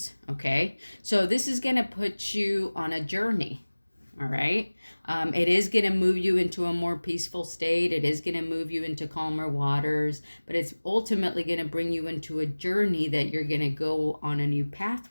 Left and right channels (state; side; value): inverted; both; correlation -1.00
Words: Okay. So this is going to put you on a journey. All right. It is going to move you into a more peaceful state. It is going to move you into calmer waters, but it's ultimately going to bring you into a journey that you're going to go on a new